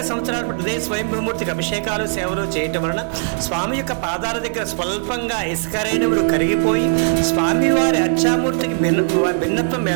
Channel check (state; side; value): silent; left; 66 dB below the other